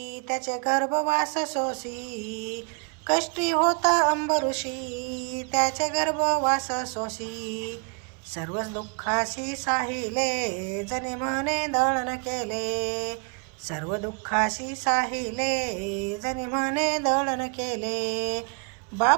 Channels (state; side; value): quieter; left; 38.5 dB